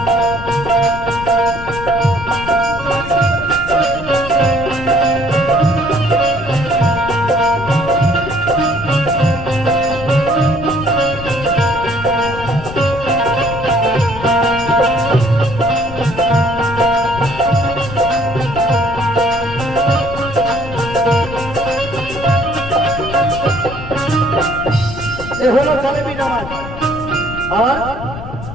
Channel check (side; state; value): left; noise; rumble, 11 dB below the sound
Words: এ হলো কালেমি নামাজ। আর